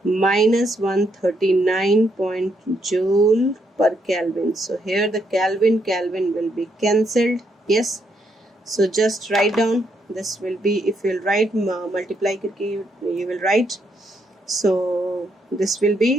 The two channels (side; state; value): both; normal; correlation 0.76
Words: minus 139 joule per Kelvin. So here the Kelvin will be cancelled. Yes, so just write down. This will be, if you will write multiply करके you will write. So this will